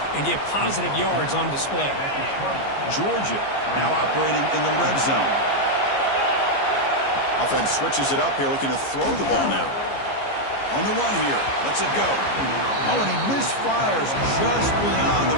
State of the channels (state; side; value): late; right; 15 ms